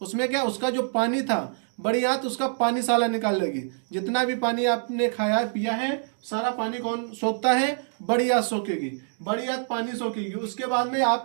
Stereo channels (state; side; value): silent; left; digital silence